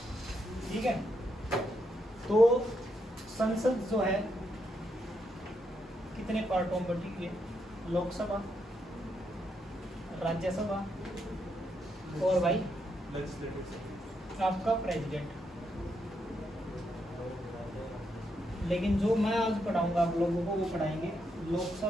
ठीक है, तो संसद जो है कितने पार्टों में बटी हुई है? लोकसभा, राज्यसभा और भाई आपका प्रेसिडेंट। लेकिन जो मैं आज पढ़ाऊंगा आप लोगों को वो पढ़ाएंगे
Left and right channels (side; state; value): both; normal; correlation 0.80